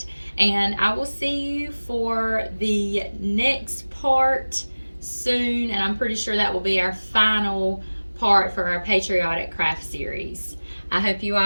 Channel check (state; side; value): inverted; both; correlation -1.00